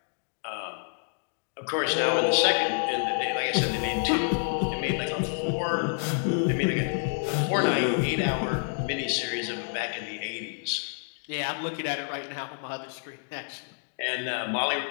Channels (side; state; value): right; silent; 59 dB below the other